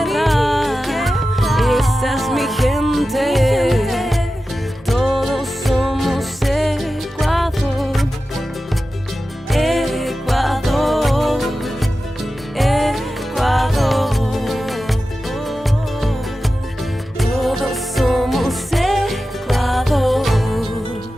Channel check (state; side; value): normal; both; correlation 0.93